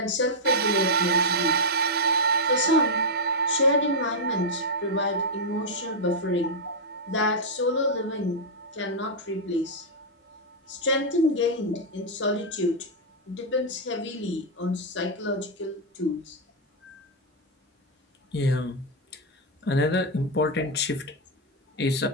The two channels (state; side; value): normal; both; correlation -0.04